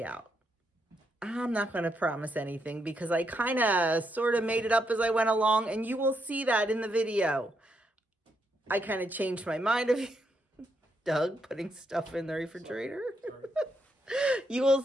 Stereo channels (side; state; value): both; normal; correlation 0.79